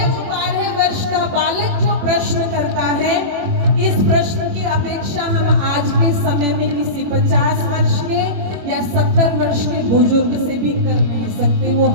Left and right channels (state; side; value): late; left; 21 ms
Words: वो 12 वर्ष का बालक जो प्रश्न करता है, इस प्रश्न की अपेक्षा हम आज के समय में किसी 50 वर्ष के या 70 वर्ष के बुजुर्ग से भी कर नहीं सकते। वो